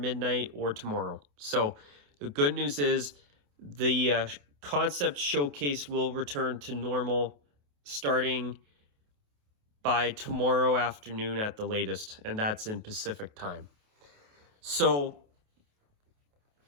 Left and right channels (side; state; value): left; late; 28 ms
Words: or tomorrow. So the good news is the concept showcase will return to normal starting by tomorrow afternoon at the latest, and that's in Pacific time. So